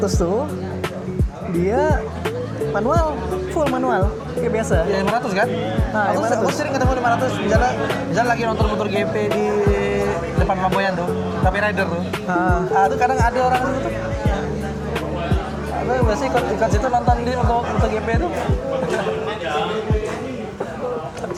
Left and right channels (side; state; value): both; identical; correlation 1.00